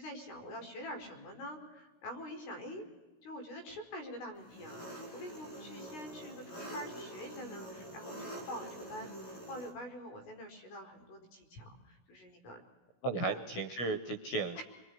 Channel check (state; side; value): late; right; 16 ms